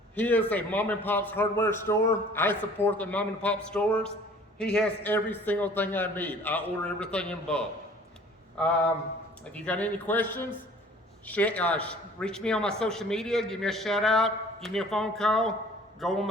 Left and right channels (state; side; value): normal; both; correlation 0.51